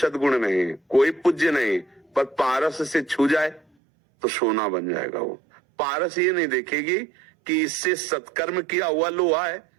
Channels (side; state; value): left; drops out; at 3.6 s